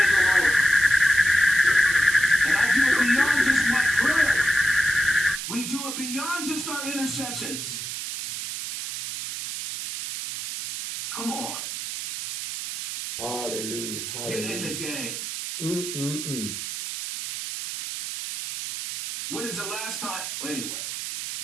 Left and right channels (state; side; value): noise; right; hiss, 6 dB below the sound